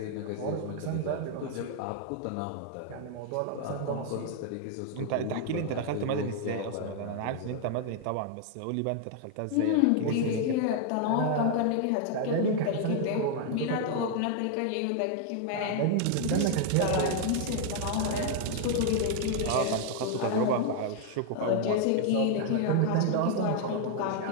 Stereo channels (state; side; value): different; both; correlation 0.00